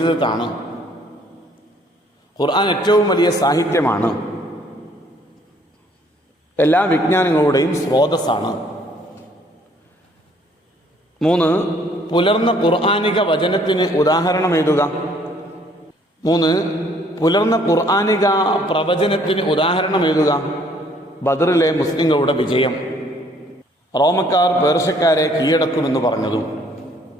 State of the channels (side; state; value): both; normal; correlation 0.62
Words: ഖുർആൻ ഏറ്റവും വലിയ സാഹിത്യമാണ്, എല്ലാ വിജ്ഞാനങ്ങളുടെയും സ്രോതസ്സാണ്. 3, പുലർന്ന ഖുർആനിക വചനത്തിന് ഉദാഹരണം എഴുതുക. 3, പുലർന്ന ഖുർആനിക പ്രവചനത്തിന് ഉദാഹരണം എഴുതുക. ബദറിലെ മുസ്ലിങ്ങളുടെ വിജയം, റോമക്കാർ പേർഷ്യക്കാരെ കീഴടക്കുമെന്ന് പറഞ്ഞതും.